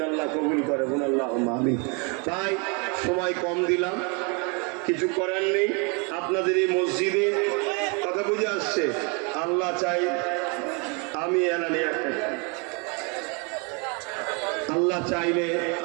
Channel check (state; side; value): quieter; left; 33.2 dB